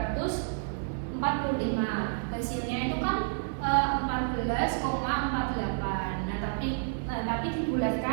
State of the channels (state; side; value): silent; left; 55 dB below the other